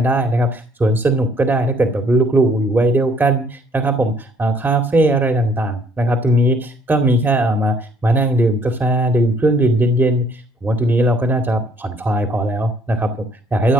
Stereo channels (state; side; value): normal; both; correlation 0.63